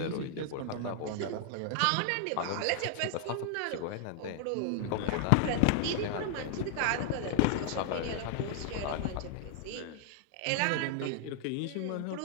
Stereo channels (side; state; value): both; different; correlation 0.00